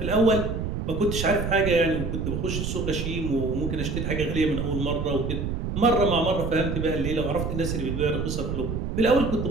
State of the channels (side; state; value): right; noise; rumble, 3 dB below the sound